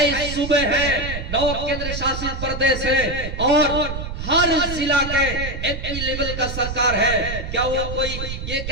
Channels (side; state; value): right; noise; rumble, 6 dB below the sound